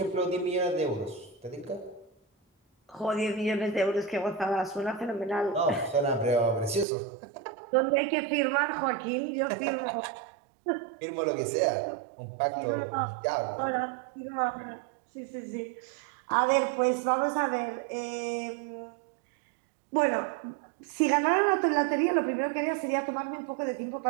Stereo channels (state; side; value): drops out; left; at 6.9 s